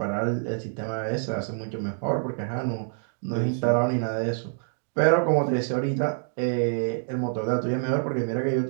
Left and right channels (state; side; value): silent; left; digital silence